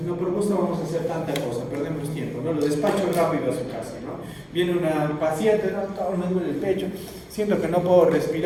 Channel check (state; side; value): identical; both; correlation 1.00